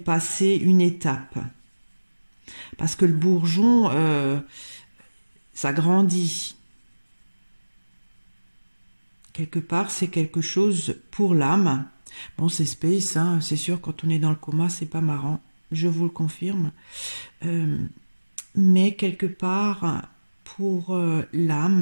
une étape. Parce que le bourgeon, ça grandit. Quelque part, c'est quelque chose pour l'âme. Bon, c'est space, hein, c'est sûr, quand on est dans le coma, c'est pas marrant. Je vous le confirme. Mais quelque part, pour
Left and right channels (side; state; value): both; inverted; correlation -1.00